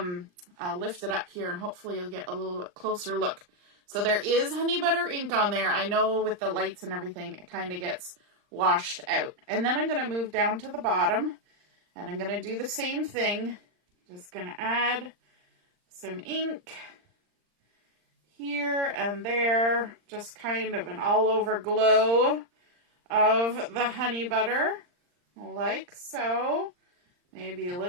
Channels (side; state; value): left; late; 39 ms